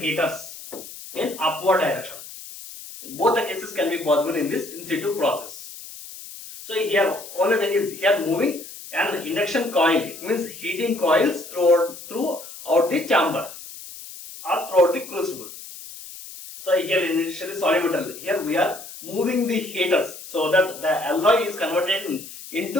in upward direction. Both the cases can be possible in this in situ process. So here only thing is here moving an induction coil. It means heating coils throughout the chamber or throughout the crucible. So here initially solid metal. Here we are moving the heaters so that the alloy is converted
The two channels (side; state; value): left; noise; hiss, 14 dB below the sound